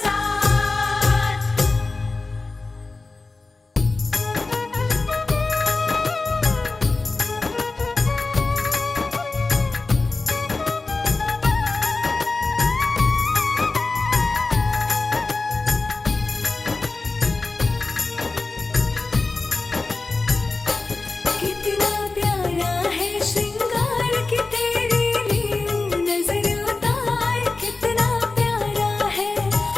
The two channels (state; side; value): quieter; right; 3.6 dB